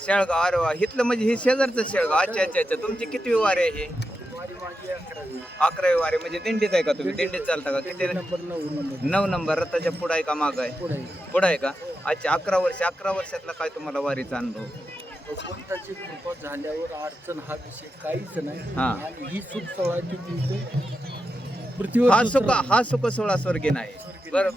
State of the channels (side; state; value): both; normal; correlation 0.88